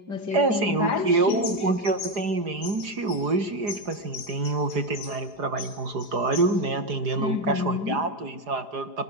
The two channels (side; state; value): left; late; 4.9 ms